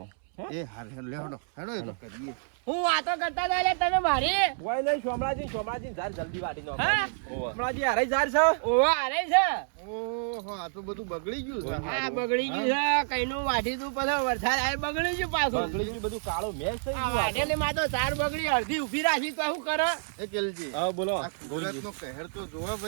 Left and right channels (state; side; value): silent; left; 59 dB below the other